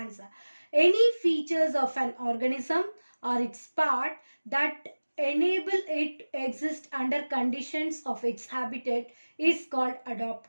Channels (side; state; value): both; inverted; correlation -1.00